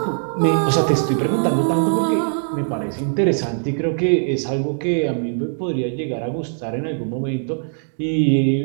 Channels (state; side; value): silent; left; digital silence